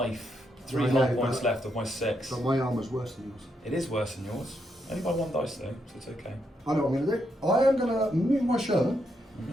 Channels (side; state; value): both; normal; correlation 0.79